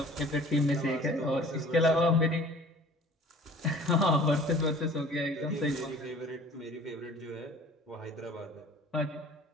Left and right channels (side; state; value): both; normal; correlation 0.48